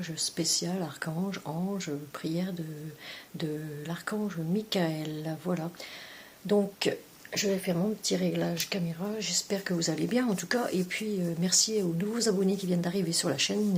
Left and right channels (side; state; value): both; identical; correlation 1.00